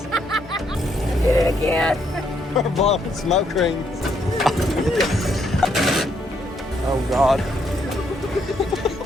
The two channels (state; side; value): normal; both; correlation 0.73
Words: I did it again. We're blowing smoke rings. Oh God.